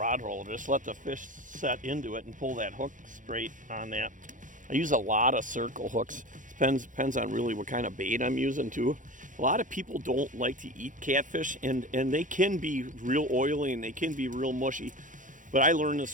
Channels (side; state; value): left; late; 0.38 ms